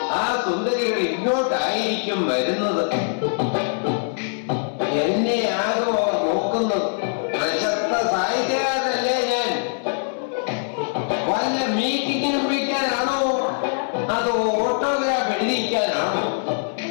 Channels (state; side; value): silent; right; 64 dB below the other